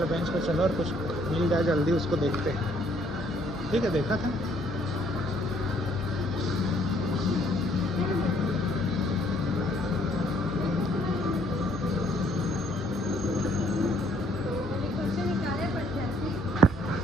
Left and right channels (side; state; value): both; normal; correlation 0.65